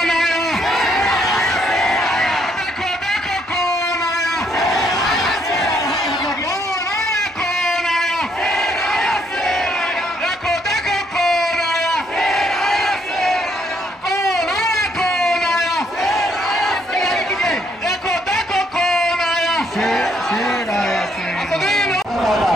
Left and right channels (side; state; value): both; normal; correlation 0.71